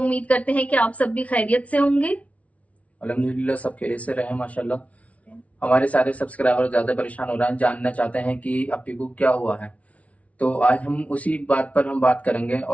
करते हैं कि आप सब भी खैरियत से होंगे। अल्हम्दुलिल्लाह सब खैरियत से रहे माशाल्लाह। हमारे सारे सब्सक्राइबर ज़्यादा परेशान हो रहे हैं, जानना चाहते हैं कि अप्पी को क्या हुआ है। तो आज हम उसी बात पर हम बात करेंगे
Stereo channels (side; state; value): right; late; 0.066 ms